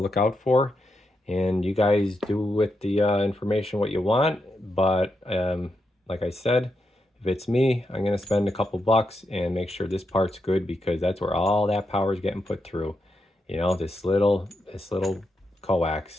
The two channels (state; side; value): normal; both; correlation 0.84